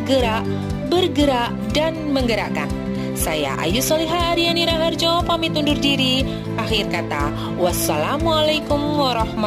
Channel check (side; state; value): both; identical; correlation 1.00